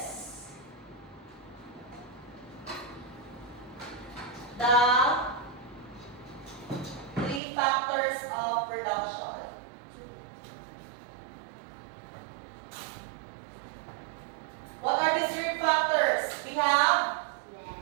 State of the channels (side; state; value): left; drops out; at 7.4 s